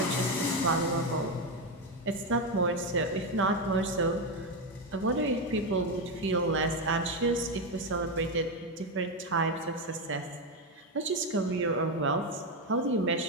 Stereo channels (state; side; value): normal; both; correlation 0.09